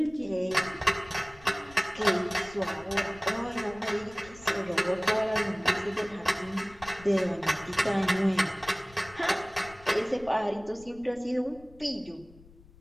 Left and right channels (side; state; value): left; noise; rumble, 22 dB below the sound